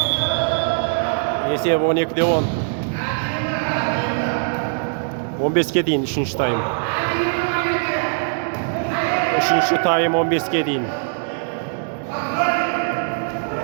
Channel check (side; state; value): left; silent; digital silence